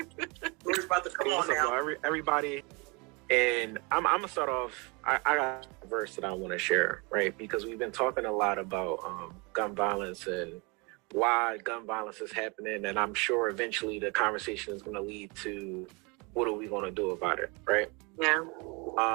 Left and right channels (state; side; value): quieter; left; 29.4 dB